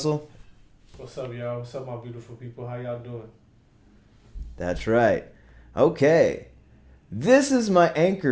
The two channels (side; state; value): both; identical; correlation 1.00